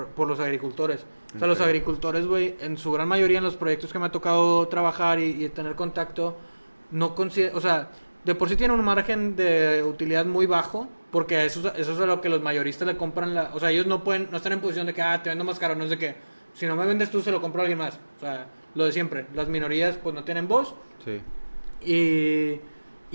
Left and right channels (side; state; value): both; inverted; correlation -1.00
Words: los agricultores. O sea, los agricultores, güey, en su gran mayoría en los proyectos que me ha tocado trabajar y tener contacto, no o sea, de por sí tienen un margen de utilidad muy bajo, porque eso es a lo que los mayoristas le compran. O sea, ellos no están en posición de que, te vendo más caro, no es de que, si no me vendes tú, se lo compro a alguien más. O sea, lo de siempre. Las minorías, pues, no tienen voz. Sí.